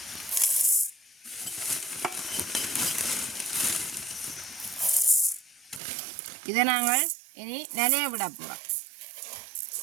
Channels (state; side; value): drops out; left; at 5.8 s